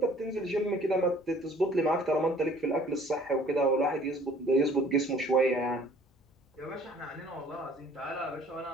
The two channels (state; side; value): normal; both; correlation 0.54